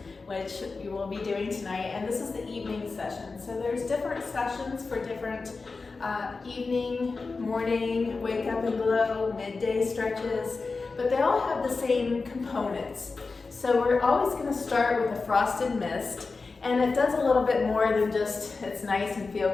which you will be doing tonight. And this is the evening session. So there's different sessions for different evening, morning, wake up and glow, midday stretches, but they all have the same components. So we're always going to start with a frosted mist, and it does a little bit more than just it's nice and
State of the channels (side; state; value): right; quieter; 4.1 dB